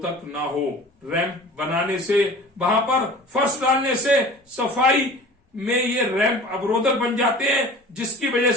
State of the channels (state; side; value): normal; both; correlation 0.42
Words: ना हो। रैंप बनाने से, वहां पर फर्श डालने से सफाई में ये रैंप अवरोधक बन जाते हैं, जिसकी वजह